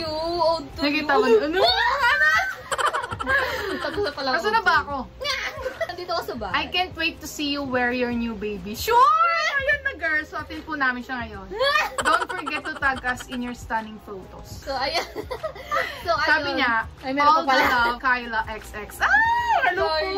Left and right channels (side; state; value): both; identical; correlation 1.00